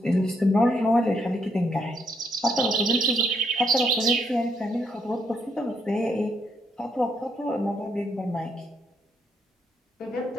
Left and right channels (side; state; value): both; normal; correlation 0.75